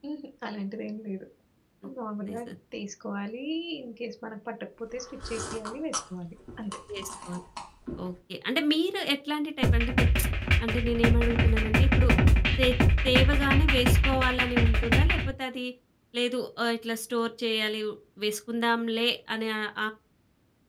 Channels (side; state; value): both; identical; correlation 1.00